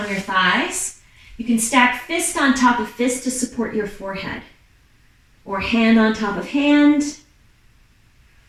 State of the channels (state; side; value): identical; both; correlation 1.00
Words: your thighs. You can stack fist on top of fist to support your forehead, or hand on top of hand,